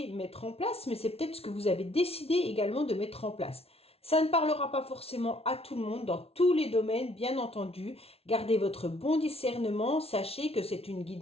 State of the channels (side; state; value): right; late; 0.29 ms